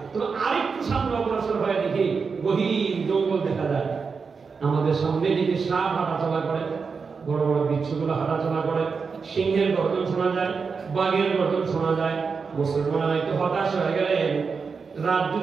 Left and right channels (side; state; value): left; quieter; 5.2 dB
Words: তো আরেকটু সামনে অগ্রসর হয়ে দেখি গহীন জঙ্গল দেখা যায়। আমাদের সামনে দিকে সাপ হাঁটাচলা করে, বড় বড় বিচ্ছুগুলো হাঁটাচলা করে, সিংহের গর্জন শোনা যায়, বাঘের গর্জন শোনা যায়। মুসলমানরা একটু হতাশ হয়ে গেলেন। রাত